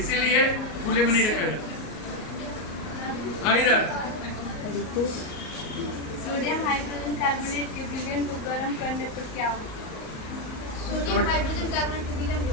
खुले में नहीं रखा जाता। इधर सोडियम हाइड्रोजन कार्बोनेट के विलयन को गर्म करने पर क्या होगा? सोडियम हाइड्रोजन कार्बोनेट के विलयन को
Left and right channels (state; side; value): late; right; 38 ms